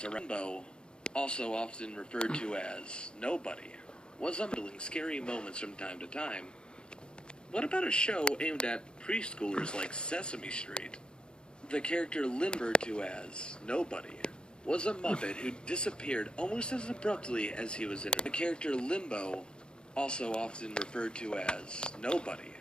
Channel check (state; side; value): late; right; 0.050 ms